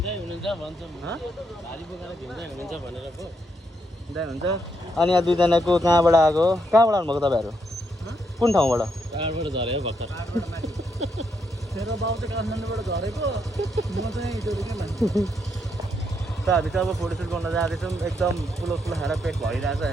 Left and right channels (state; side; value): normal; both; correlation 0.78